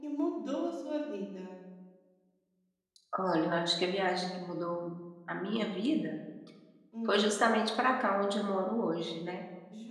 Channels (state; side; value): identical; both; correlation 1.00